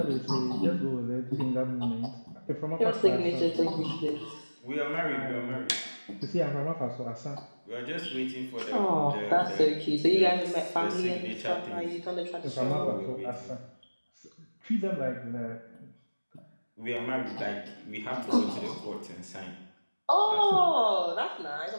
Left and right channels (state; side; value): inverted; both; correlation -1.00